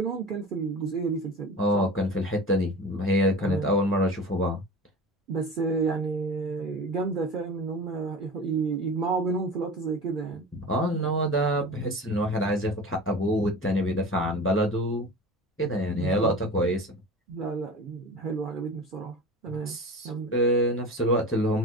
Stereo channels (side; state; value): both; normal; correlation 0.34